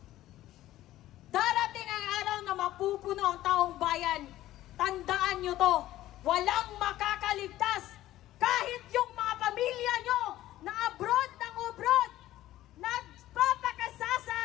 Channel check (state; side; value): quieter; right; 14.7 dB